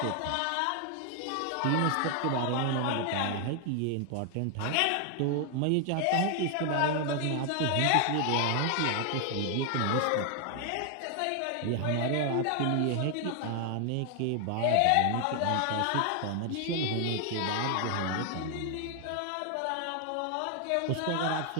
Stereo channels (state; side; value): different; both; correlation 0.00